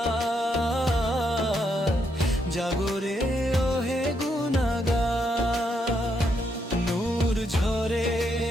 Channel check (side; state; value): both; normal; correlation 0.77